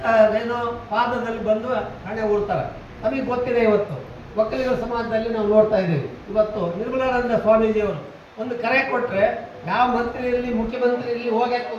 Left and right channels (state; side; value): identical; both; correlation 1.00